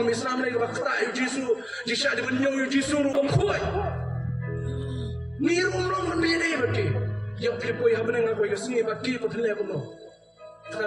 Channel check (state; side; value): identical; both; correlation 1.00